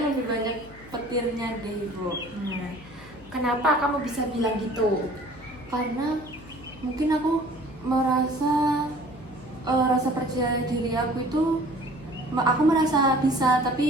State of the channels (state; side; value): noise; left; hum, 22 dB below the sound